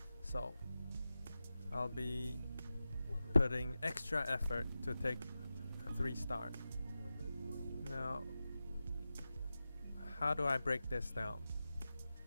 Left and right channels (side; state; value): both; inverted; correlation -0.93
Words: So I'll be putting extra effort to take a 3-star. Now, how do I break this down?